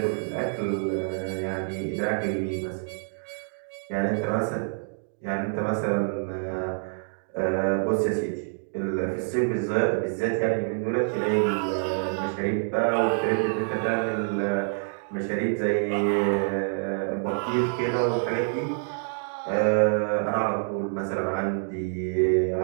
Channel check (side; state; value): left; silent; digital silence